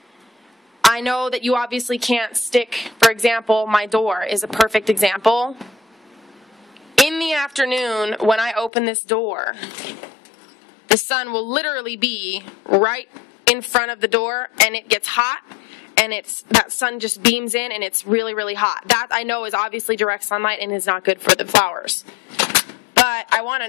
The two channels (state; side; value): drops out; right; at 8.7 s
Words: I know that you obviously can't stick, for example, my door is a perfect example. In the afternoon, when I open this door, the sun will literally be right in front of the door, and it gets hot, and that sun just beams in, and it's really, really hot. That, I know, is obviously direct sunlight and is not good for the flowers. But I want to